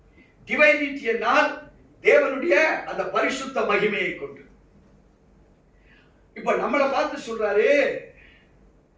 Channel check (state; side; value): identical; both; correlation 1.00